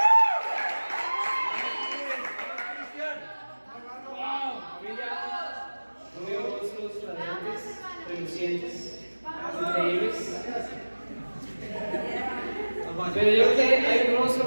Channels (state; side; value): inverted; both; correlation -1.00